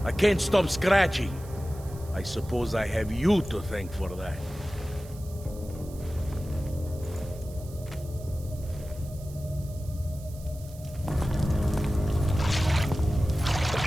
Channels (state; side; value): noise; right; hiss, 21 dB below the sound